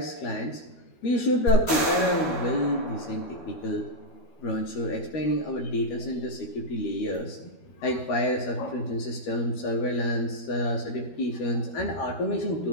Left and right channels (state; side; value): late; right; 12 ms